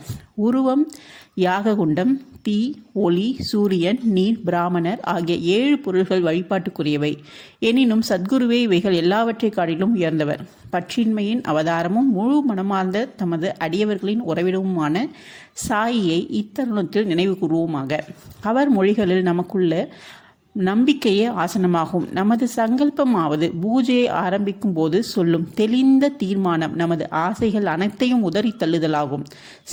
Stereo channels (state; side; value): identical; both; correlation 1.00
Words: உருவம், யாககுண்டம், தீ, ஒளி, சூரியன், நீர், பிராமணர் ஆகிய 7 பொருள்கள் வழிபாட்டுக்குரியவை. எனினும் சத்குருவே இவைகள் எல்லாவற்றை காட்டிலும் உயர்ந்தவர். பற்றின்மையின் அவதாரமும் முழு மனமார்ந்த தமது அடியவர்களின் உறவிடமுமான சாயியை இத்தருணத்தில் நினைவு கூறுவோமாக. அவர் மொழிகளில் நமக்குள்ள நம்பிக்கையே ஆசனமாகும். நமது சங்கல்பமாவது பூஜையை ஆரம்பிக்கும் போது சொல்லும் தெளிந்த தீர்மானம் நமது ஆசைகள் அனைத்தையும் உதறி தள்ளுதலாகும்.